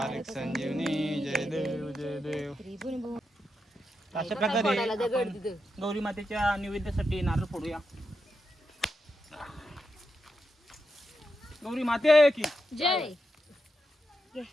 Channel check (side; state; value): both; normal; correlation 0.86